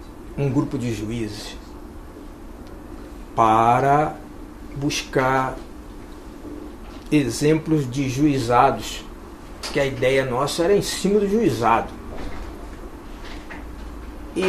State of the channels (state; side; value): identical; both; correlation 1.00